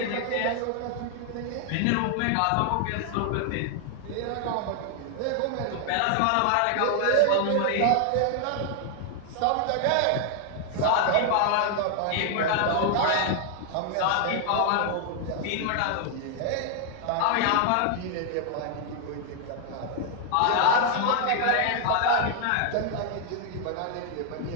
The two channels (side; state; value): both; different; correlation 0.00